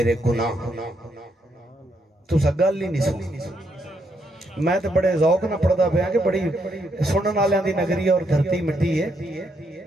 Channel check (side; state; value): both; normal; correlation 0.76